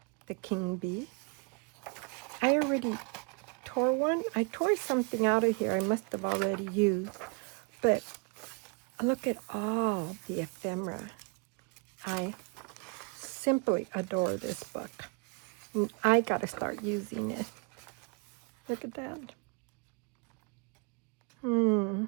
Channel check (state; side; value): quieter; left; 34.5 dB